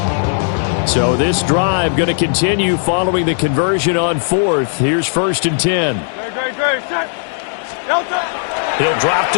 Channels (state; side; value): silent; right; digital silence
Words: So this drive going to continue following the conversion on 4th. Here's 1st and 10. He'll drop